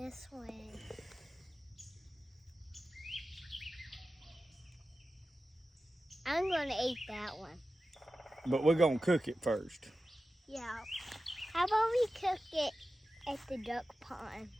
one. I'm gonna eat that one. But we're gonna cook it first. Yeah. How about we cook it at the duck pond?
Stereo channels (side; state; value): both; normal; correlation 0.93